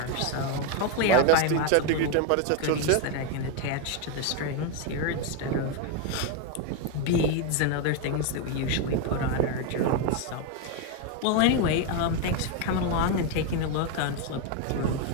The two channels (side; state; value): both; different; correlation 0.01